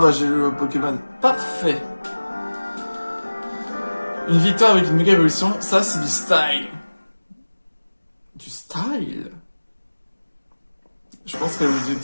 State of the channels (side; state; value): both; inverted; correlation -1.00